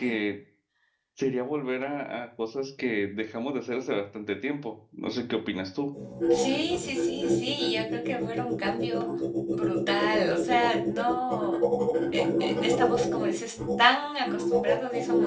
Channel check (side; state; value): both; identical; correlation 1.00